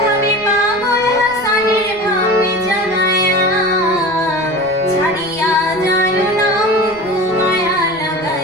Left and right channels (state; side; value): noise; right; rumble, 22 dB below the sound